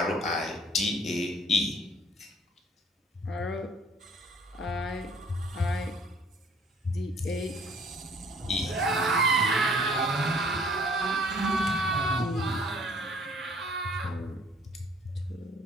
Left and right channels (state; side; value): normal; both; correlation 0.56